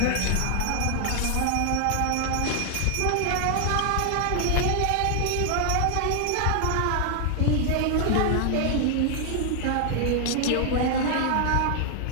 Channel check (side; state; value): both; different; correlation 0.00